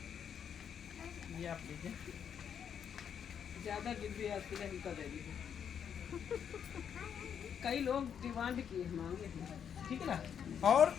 ये आप लीजिए। ज़्यादा डिब्बे आपके लिए हल्का दे दीजिए। कई लोग डिमांड किए मांगे हैं, ठीक है ना। और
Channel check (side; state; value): right; quieter; 8.1 dB